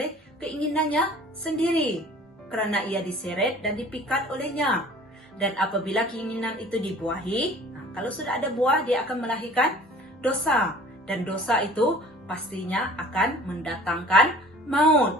keinginannya sendiri, kerana ia diseret dan dipikat olehnya. Dan apabila keinginan itu dibuahi, kalau sudah ada buah, dia akan melahirkan dosa. Dan dosa itu pastinya akan mendatangkan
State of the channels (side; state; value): both; normal; correlation 0.48